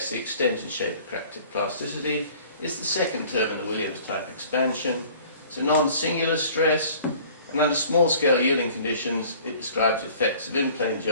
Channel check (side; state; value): both; inverted; correlation -0.50